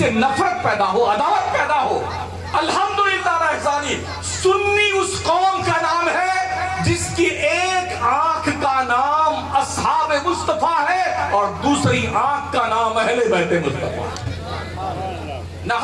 نفرت پیدا ہو، عداوت پیدا ہو. الحمدللہ رحمانی سنی اس قوم کا نام ہے جس کی ایک آنکھ کا نام اصحاب مصطفیٰ ہے اور دوسری آنکھ کا نام اہل بیت مصطفیٰ. نہ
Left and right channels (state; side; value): identical; both; correlation 1.00